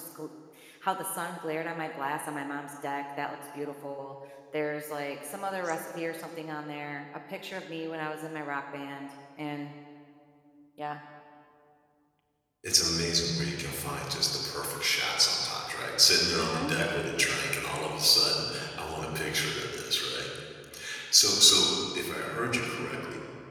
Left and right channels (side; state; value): both; identical; correlation 1.00